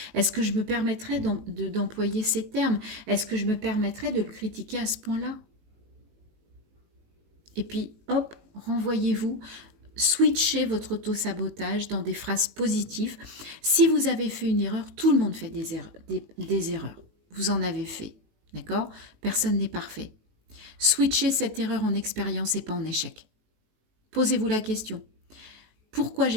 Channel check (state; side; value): late; left; 19 ms